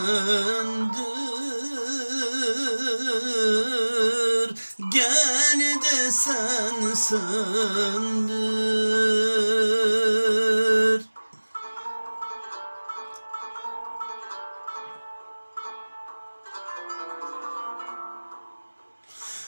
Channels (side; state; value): both; inverted; correlation -1.00